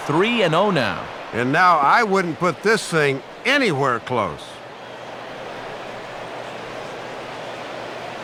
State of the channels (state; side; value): identical; both; correlation 1.00